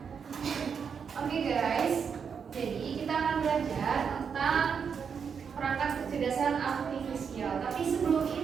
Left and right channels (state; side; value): quieter; left; 6.6 dB